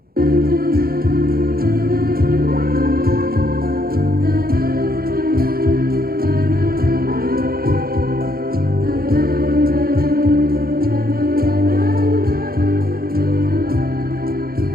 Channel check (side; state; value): left; late; 0.44 ms